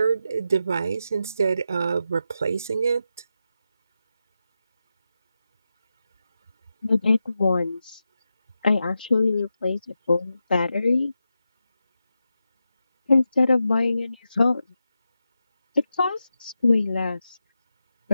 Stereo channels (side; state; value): both; inverted; correlation -0.89